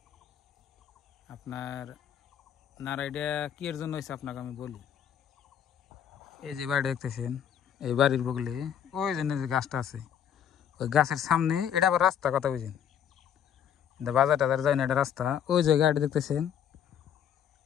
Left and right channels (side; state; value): right; quieter; 9.0 dB